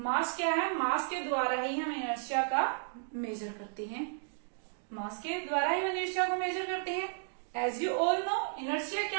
क्या है? मास के द्वारा ही हम inertia का major करते हैं। मास के द्वारा ही इनर्शिया को मेजर करते हैं। As you all know, inertia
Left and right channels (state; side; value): silent; left; digital silence